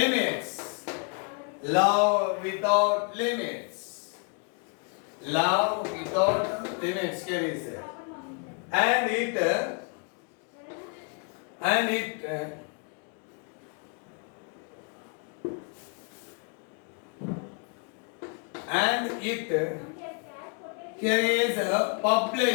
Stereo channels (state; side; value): quieter; right; 37.5 dB